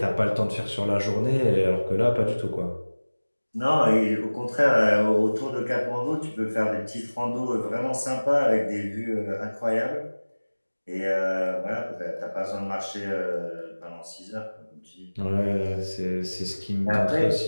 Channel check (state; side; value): inverted; both; correlation -1.00